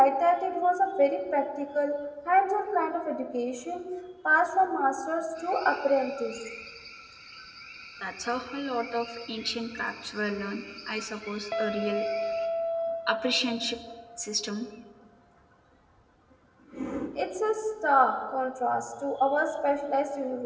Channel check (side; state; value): both; identical; correlation 1.00